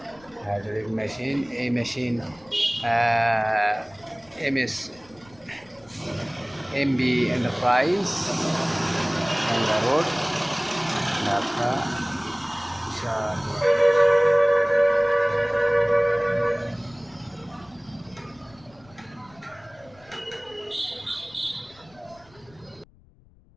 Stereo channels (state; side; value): noise; left; rumble, 28 dB below the sound